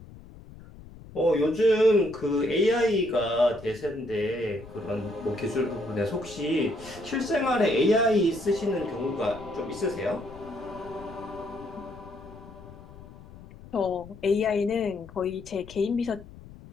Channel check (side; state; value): left; noise; rumble, 18 dB below the sound